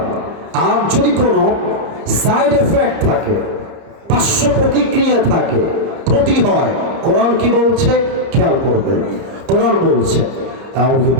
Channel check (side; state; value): left; late; 30 ms